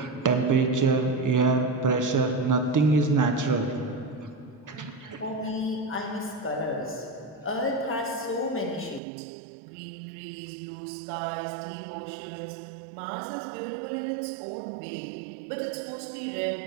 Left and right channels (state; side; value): drops out; left; at 9.0 s